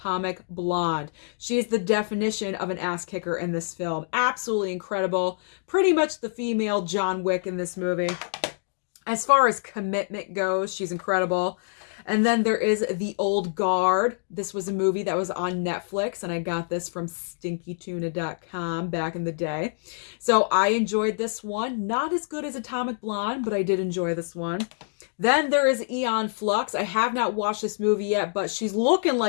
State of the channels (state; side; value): silent; right; digital silence